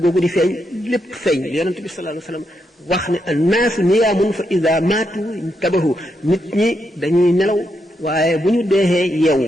googu di feeñ lépp feeñ yonent bi sallallahu alayhi wasallam wax ne annaasu niyaamun fa ida maatu intabahu nit ñi dañuy nelaw waaye bu ñu deexee yeewu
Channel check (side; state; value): both; normal; correlation 0.82